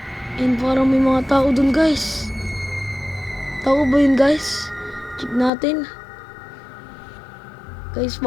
And parang may mga tao dun guys. Tao ba yun guys? Check natin. Guys,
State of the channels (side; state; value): right; drops out; at 5.5 s